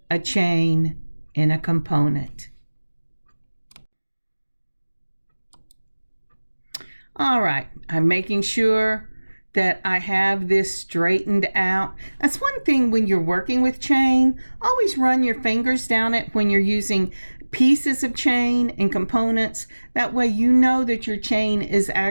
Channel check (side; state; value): both; inverted; correlation -1.00